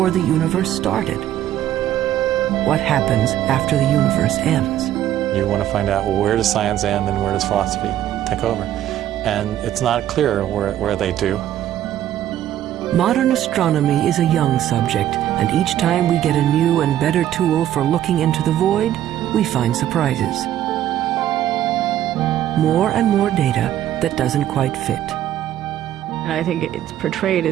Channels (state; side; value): quieter; left; 12.0 dB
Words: the universe started? What happens after the universe ends? You want to find out, well, where does science end and where does philosophy take over? And it's not clear where they do. Modern astronomy is a young subject, and each time we get a new and better tool for looking into the void, we find surprises. More and more data that doesn't quite fit. And I think it's portrayed